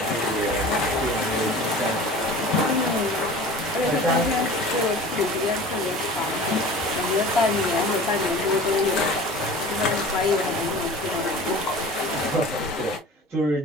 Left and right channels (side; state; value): both; normal; correlation 0.40